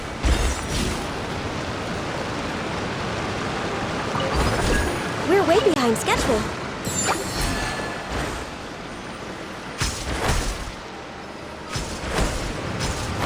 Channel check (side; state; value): both; identical; correlation 1.00